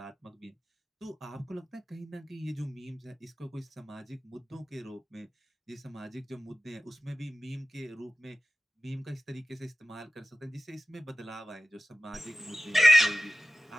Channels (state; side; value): normal; both; correlation 0.96